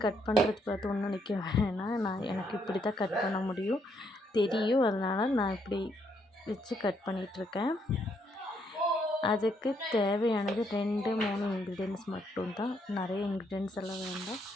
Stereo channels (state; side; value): normal; both; correlation 0.73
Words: கட் பண்ணுறது பார்த்து ஒன்றும் நிற்க வேணாம், எனக்கு இப்படி தான் கட் பண்ண முடியும் தெரியும், அதனால் நான் இப்படி வச்சு கட் பண்ணிகிட்ருக்கேன். அதுக்கு தேவையானது 2-3 இன்க்ரீடியன்ட்ஸ் மட்டும்தான், நிறைய இன்க்ரீடியன்ட்ஸ் எல்லாம் வேண்டாம்.